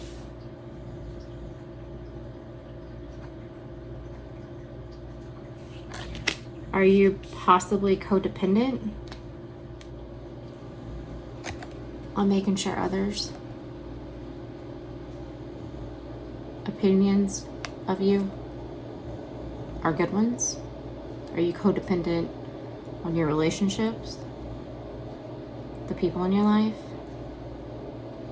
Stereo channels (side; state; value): both; identical; correlation 1.00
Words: Are you possibly codependent on making sure others' opinions of you are good ones? Are you codependent on your relationships, the people in your life?